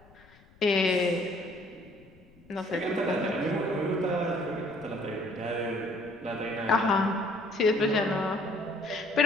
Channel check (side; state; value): left; noise; rumble, 27 dB below the sound